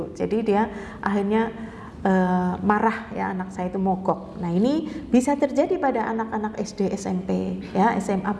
Jadi dia akhirnya marah ya, anak saya itu mogok. Nah ini bisa terjadi pada anak-anak SD, SMP, ya SMA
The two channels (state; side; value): identical; both; correlation 1.00